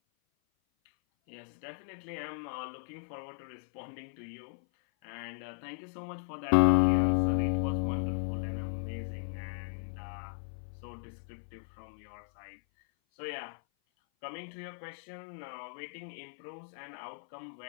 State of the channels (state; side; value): silent; right; 54 dB below the other